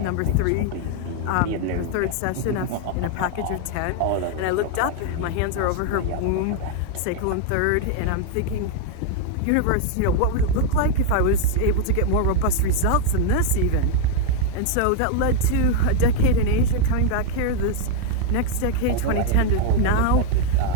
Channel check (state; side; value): different; both; correlation 0.00